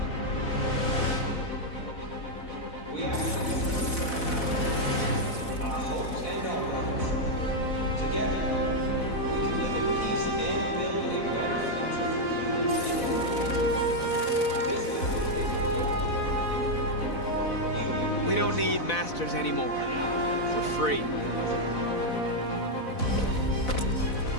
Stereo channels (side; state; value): right; late; 4.0 ms